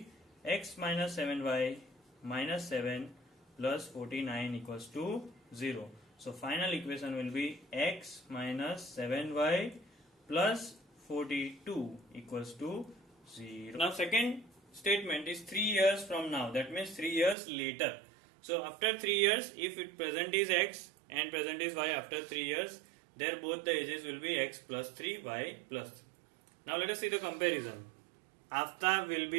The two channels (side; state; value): left; drops out; at 17.4 s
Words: X minus 7Y minus 7 plus 49 equals to 0. So final equation will be X minus 7Y plus 42 equals to 0. Now second statement is 3 years from now, that means 3 years later. So after 3 years, if it present is X and present is Y, after 3 years, there both the ages will be X plus 3, Y plus 3. Now let us see the comparison. Aftab will